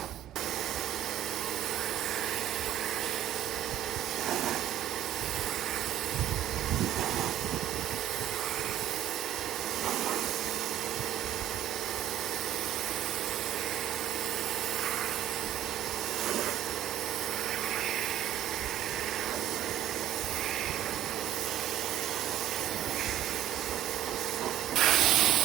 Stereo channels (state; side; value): quieter; left; 11.6 dB